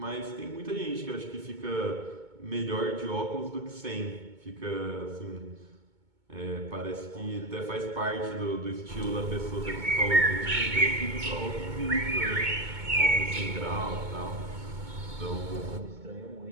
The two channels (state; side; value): late; left; 2.2 ms